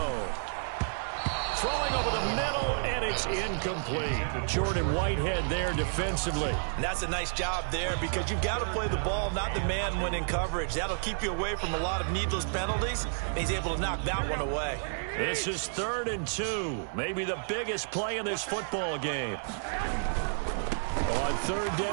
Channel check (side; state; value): left; silent; digital silence